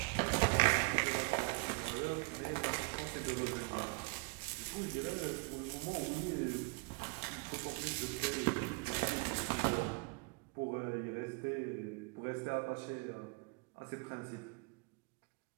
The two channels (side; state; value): left; quieter; 27.4 dB